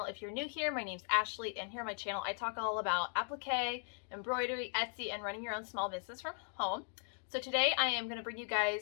If you're new here, my name's Ashley, and here on my channel I talk all about applique, embroidery, Etsy, and running your own small business from home. So today I am going to bring you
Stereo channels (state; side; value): silent; right; 52 dB below the other